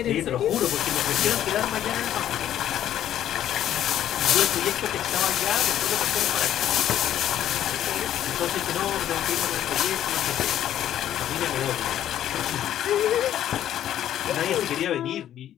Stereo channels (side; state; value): right; quieter; 11.3 dB